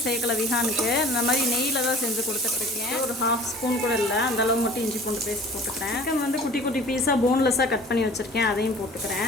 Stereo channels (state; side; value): normal; both; correlation 0.46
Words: சேர்க்கலை விஹானுக்கு. இந்த மாதிரி நெய்யில் தான் செஞ்சு கொடுத்துட்ருக்கேன். ஒரு 1/2 ஸ்பூன் கூட இல்லை, அந்தளவு மட்டும் இஞ்சி பூண்டு பேஸ்ட் போட்டுக்கிறேன். சிக்கன் வந்து குட்டி குட்டி பீஸாக போன்லெஸ்ஸாக கட் பண்ணி வச்சுருக்கேன், அதையும்